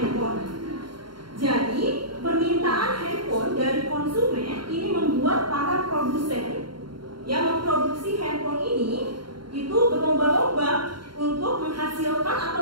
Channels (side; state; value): left; late; 0.72 ms